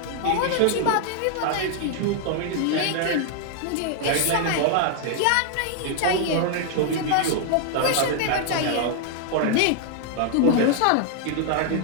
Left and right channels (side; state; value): both; different; correlation 0.00